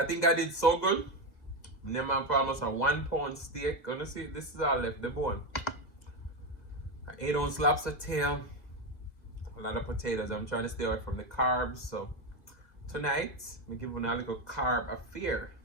think I did so good. Name for almost a 1 pound steak. Gonna see, this is all left, the bone. An 8-ounce lobster tail. A lot of potatoes. I'm trying to stay away from the carbs. So tonight, I'm giving a little carb affair.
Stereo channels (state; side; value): late; right; 1.9 ms